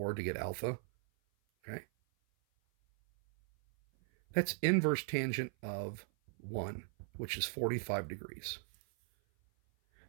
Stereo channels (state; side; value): silent; left; 52 dB below the other